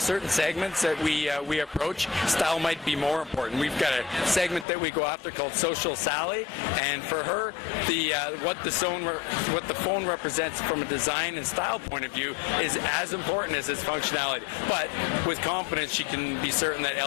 segments that we approach, style might be more important. We've got a segment that we go after called Social Sally, and for her, what the phone represents from a design and style point of view is as important as its functionality. But with confidence, she can be certain that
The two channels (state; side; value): drops out; right; at 4.7 s